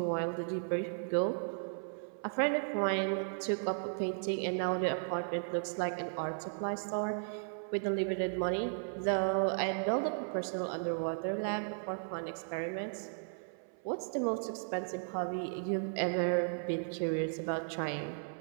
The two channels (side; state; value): left; silent; 54 dB below the other